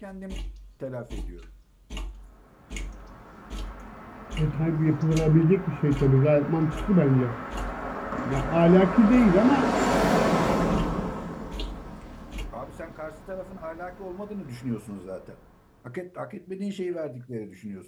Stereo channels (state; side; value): identical; both; correlation 1.00